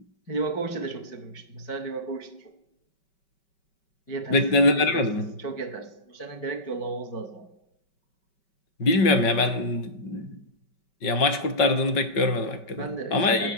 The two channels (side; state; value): right; late; 5.2 ms